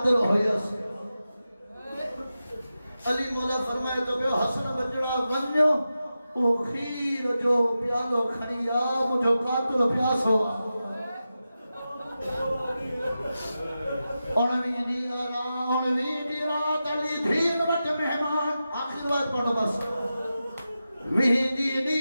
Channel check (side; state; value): both; inverted; correlation -0.91